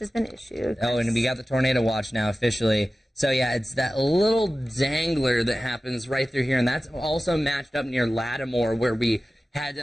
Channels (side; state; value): both; normal; correlation 0.95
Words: has been issued. Oh, and we got the tornado watch now officially. So, yeah, it's that little dangler that happens right through here, and that's also matched up near Lattimore where we had